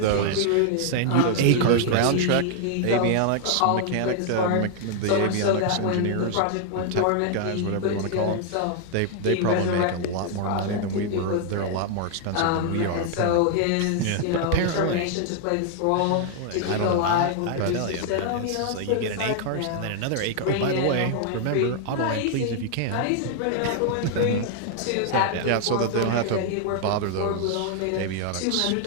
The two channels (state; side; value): different; both; correlation 0.00